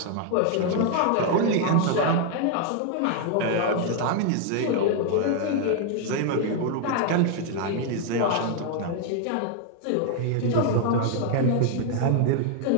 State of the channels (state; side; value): different; both; correlation 0.00